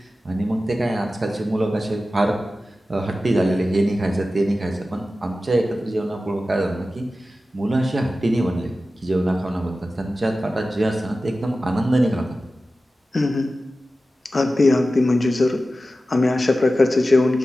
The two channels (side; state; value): both; normal; correlation 0.94